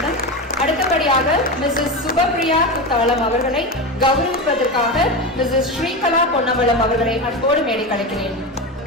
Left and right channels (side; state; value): both; normal; correlation 0.20